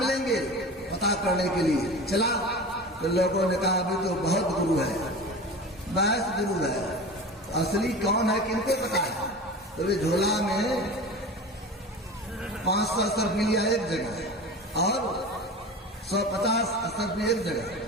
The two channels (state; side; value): normal; both; correlation 0.33